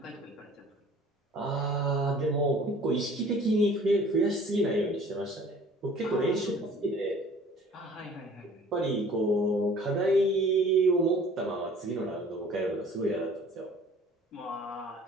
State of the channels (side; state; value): both; normal; correlation 0.50